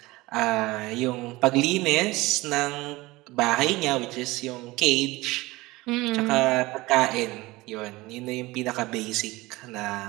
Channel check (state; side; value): quieter; left; 20.7 dB